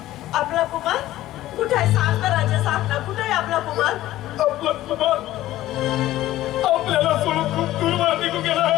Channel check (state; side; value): quieter; right; 14.9 dB